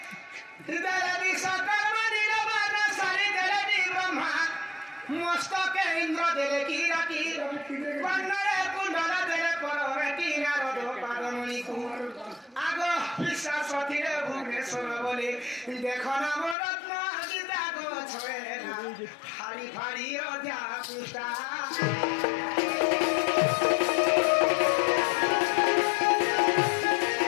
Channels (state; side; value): drops out; right; at 16.6 s